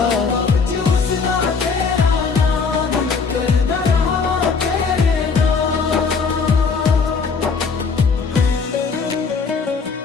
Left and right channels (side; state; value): right; quieter; 5.1 dB